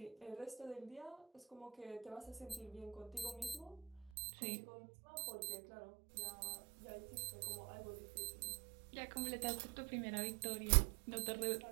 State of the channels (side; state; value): left; drops out; at 4.1 s